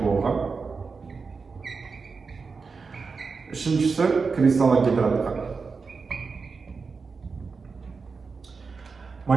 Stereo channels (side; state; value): left; quieter; 4.8 dB